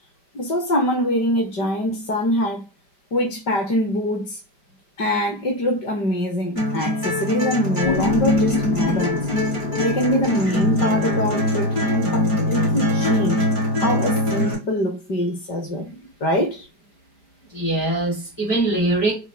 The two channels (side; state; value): right; late; 5.0 ms